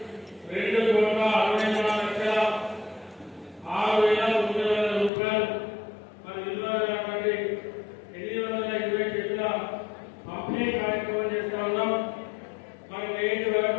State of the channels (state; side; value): drops out; right; at 5.1 s